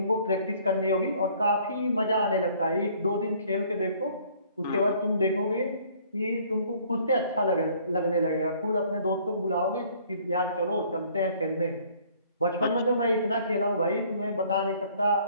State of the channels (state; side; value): inverted; both; correlation -0.58